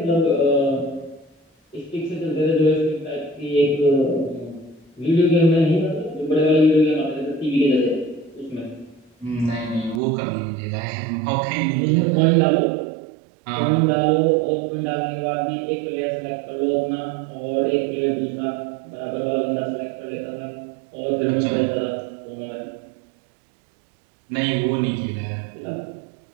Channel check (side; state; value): left; drops out; at 10.0 s